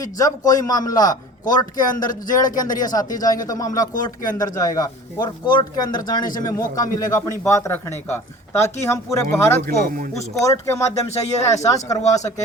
जब कोई मामला कोर्ट के अंदर, जेल के अंदर ये साथी जाएंगे तो मामला कोर्ट के अंदर जाएगा, और कोर्ट के अंदर जाने से हमें मौका मिलेगा अपनी बात रखने का, ताकि हम पूरे भारत को उस कोर्ट के माध्यम से ये एहसास करवा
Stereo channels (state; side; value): normal; both; correlation 0.42